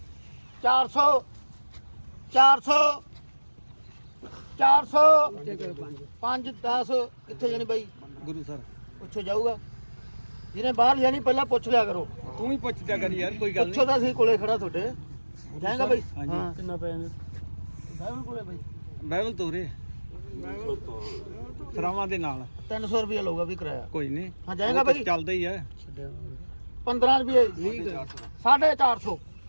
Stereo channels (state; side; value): inverted; both; correlation -1.00